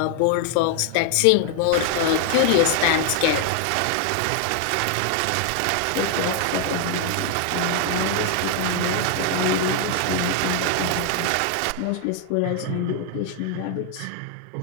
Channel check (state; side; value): different; both; correlation 0.00